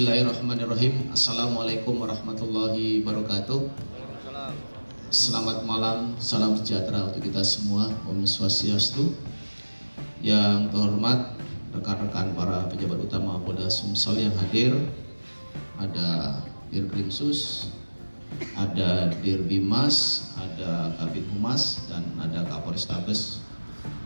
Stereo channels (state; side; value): inverted; both; correlation -1.00